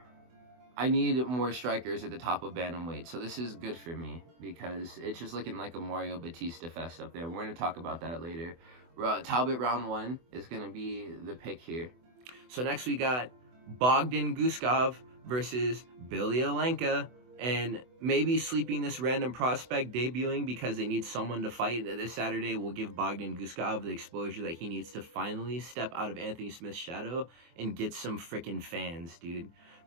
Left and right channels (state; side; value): late; left; 24 ms